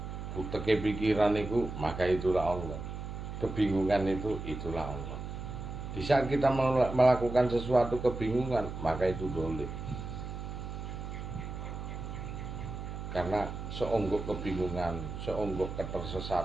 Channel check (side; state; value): right; noise; hum, 7 dB below the sound